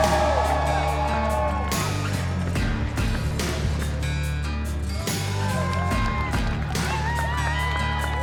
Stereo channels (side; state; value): both; identical; correlation 1.00